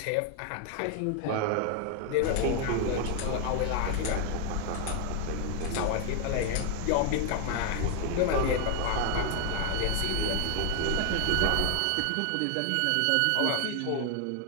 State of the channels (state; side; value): different; both; correlation 0.00